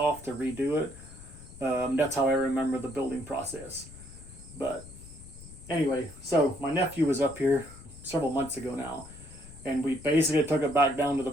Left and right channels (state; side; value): noise; left; rumble, 17 dB below the sound